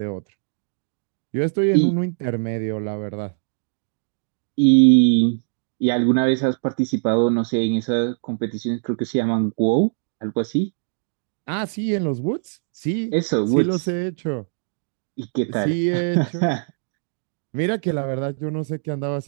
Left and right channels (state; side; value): silent; left; digital silence